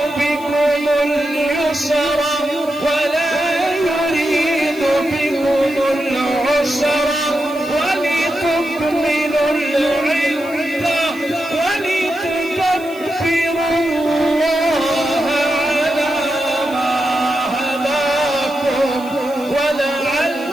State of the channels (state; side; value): noise; right; hiss, 21 dB below the sound